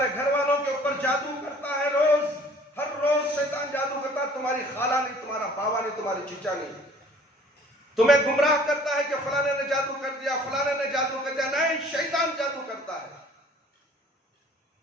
گھر والوں کے اوپر جادو کرتا ہے، ہر روز شیطان جادو کرتا ہے، تمہاری خالہ نہیں، تمہارا باوا نہیں، تمہاری چچا نہیں، تمہیں گمراہ کرتا ہے کہ فلانے نے جادو کر دیا، فلانے نے جادو کر دیا، نہیں، شیطان جادو کرتا ہے،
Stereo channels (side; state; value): both; normal; correlation 0.52